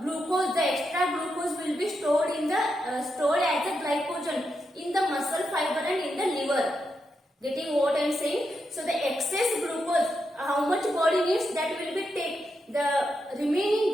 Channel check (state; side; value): normal; both; correlation 0.85